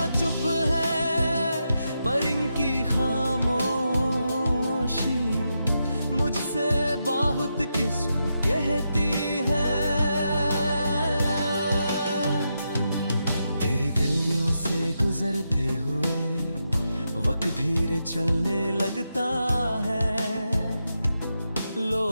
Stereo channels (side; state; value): both; inverted; correlation -0.85